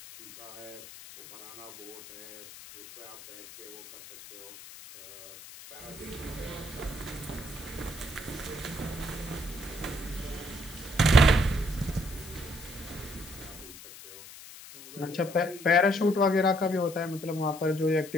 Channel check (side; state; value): left; noise; hiss, 16 dB below the sound